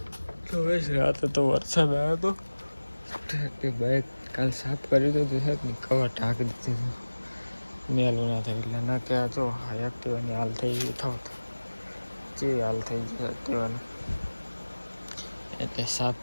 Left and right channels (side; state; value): both; inverted; correlation -1.00